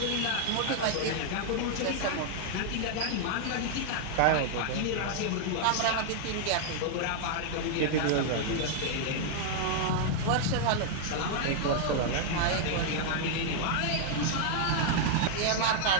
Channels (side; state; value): both; different; correlation 0.00